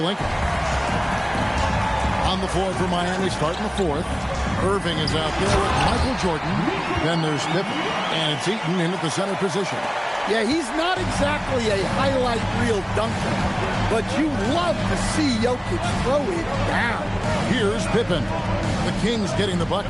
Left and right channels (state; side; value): identical; both; correlation 1.00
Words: On the floor for Miami, starting the 4th. Erving is out there with Michael Jordan. Then there's Pippen. And it's Eaton in at the center position. Yeah, he's not exactly a highlight reel dunker, but you love to see Jokic throw it down. Here's Pippen. The Kings getting the